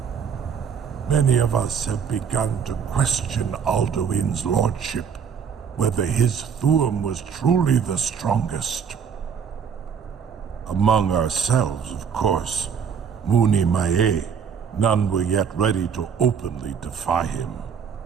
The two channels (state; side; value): quieter; left; 7.1 dB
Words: Many of us have begun to question Alduin's lordship, whether his Thuum was truly the strongest. Among ourselves, of course, Muni Mae, none were yet ready to openly defy him.